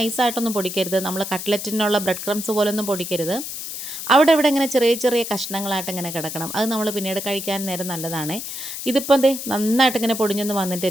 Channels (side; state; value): left; noise; hiss, 7 dB below the sound